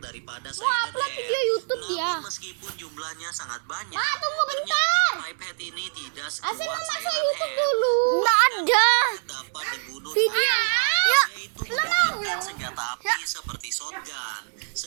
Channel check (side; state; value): left; silent; 62 dB below the other